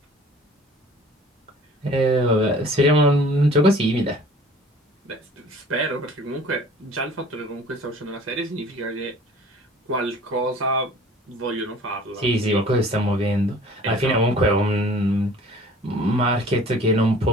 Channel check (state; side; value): normal; both; correlation 0.49